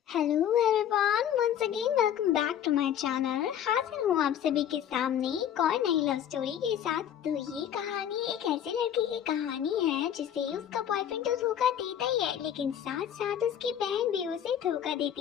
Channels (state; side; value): quieter; right; 9.8 dB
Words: Hello everyone, once again welcome back to my channel. हाजिर हूँ आप सभी के सामने एक और नई लव स्टोरी के साथ। तो ये कहानी एक ऐसे लड़के की कहानी है जिसे उसका बॉयफ्रेंड तो धोखा देता ही है, लेकिन साथ साथ उसकी बहन भी उसे धोखा